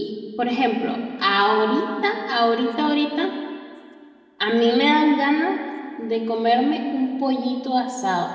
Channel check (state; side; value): identical; both; correlation 1.00